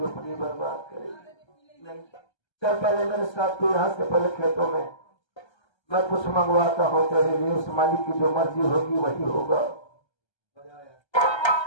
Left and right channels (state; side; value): late; right; 1.3 ms